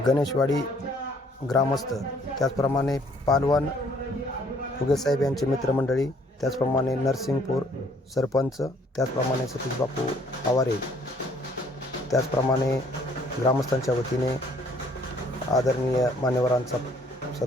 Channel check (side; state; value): both; normal; correlation 0.61